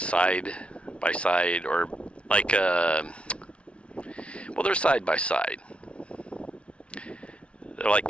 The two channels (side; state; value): right; late; 0.060 ms